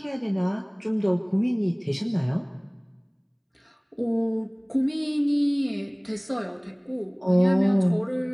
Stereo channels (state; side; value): identical; both; correlation 1.00